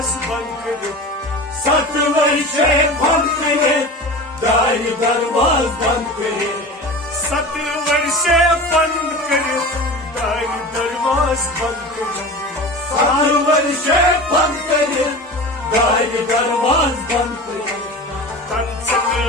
बंद करित 7 वर्षे बंद करित दार दरवाज बंद करित 7 वर्षे बंद करित दार दरवाज बंद करित 7 वर्षे बंद करित दार दरवाज बंद करित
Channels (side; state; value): both; normal; correlation 0.33